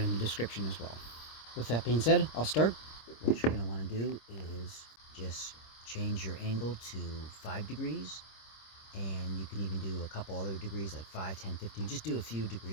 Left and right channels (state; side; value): late; right; 26 ms